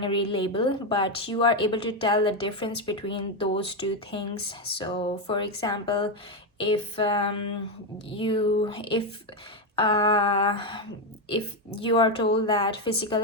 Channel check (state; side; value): normal; both; correlation 0.07